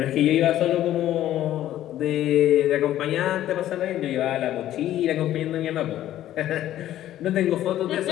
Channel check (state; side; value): quieter; right; 12.8 dB